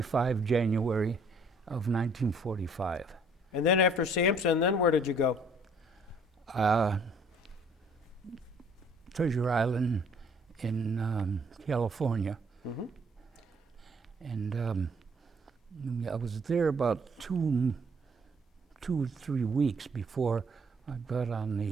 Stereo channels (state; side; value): normal; both; correlation 0.60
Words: January of 1945. And then after Sampson, then where did you go? Treasure Island in California. Mhm. And I was there about 2 or 3 weeks before I got on